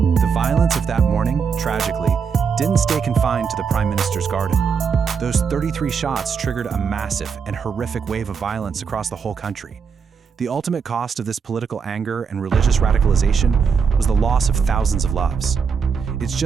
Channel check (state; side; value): quieter; left; 6.1 dB